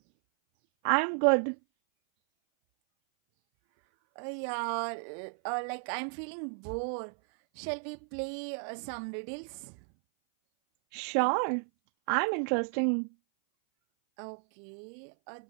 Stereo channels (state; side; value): silent; left; 56 dB below the other